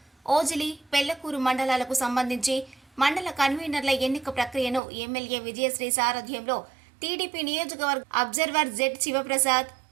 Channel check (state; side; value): drops out; left; at 4.8 s